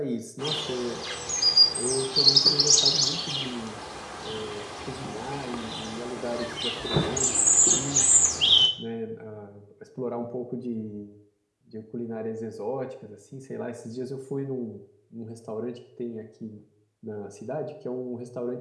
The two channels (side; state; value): both; identical; correlation 1.00